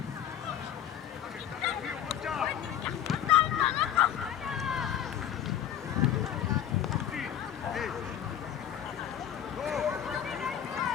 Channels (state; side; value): quieter; right; 10.0 dB